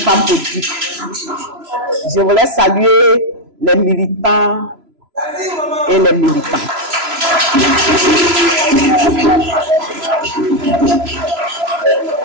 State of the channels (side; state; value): left; late; 3.0 ms